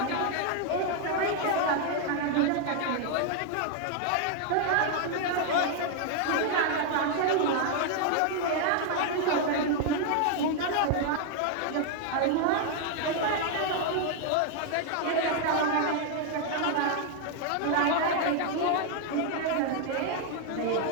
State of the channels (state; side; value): different; both; correlation 0.00